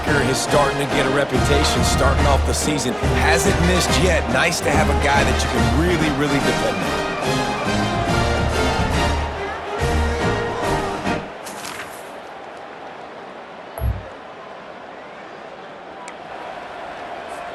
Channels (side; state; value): both; identical; correlation 1.00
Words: is starting to get a reputation starting off the season. Hasn't missed yet. Nice to have a guy that you can really, really depend on.